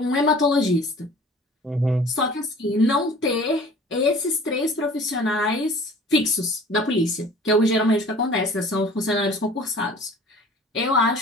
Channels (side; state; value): both; normal; correlation 0.47